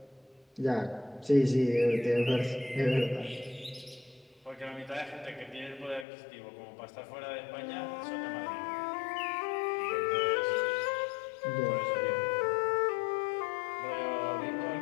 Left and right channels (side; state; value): right; drops out; at 6.1 s